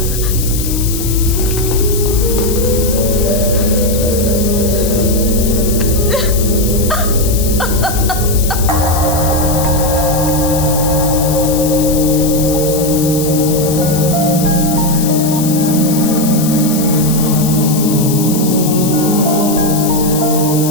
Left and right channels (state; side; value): noise; left; hiss, 7 dB below the sound